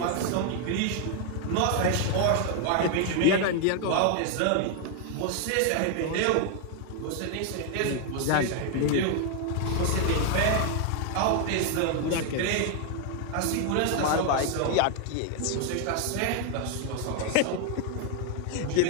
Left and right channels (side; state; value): both; different; correlation 0.01